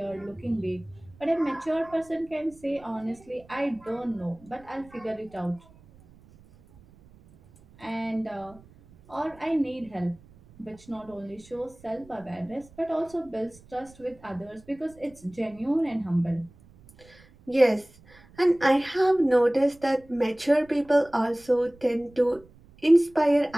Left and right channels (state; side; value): noise; right; rumble, 25 dB below the sound